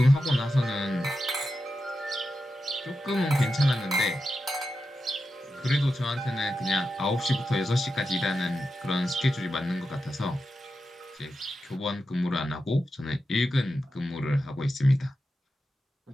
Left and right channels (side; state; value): both; normal; correlation 0.89